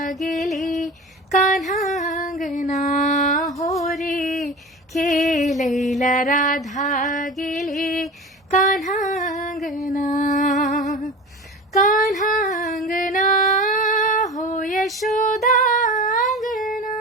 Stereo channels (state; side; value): normal; both; correlation 0.33